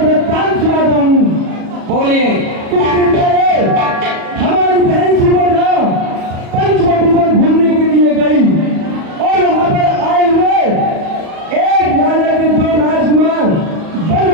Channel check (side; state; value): left; late; 37 ms